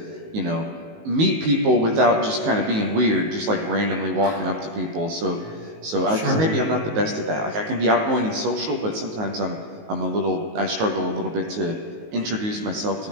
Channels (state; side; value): late; left; 19 ms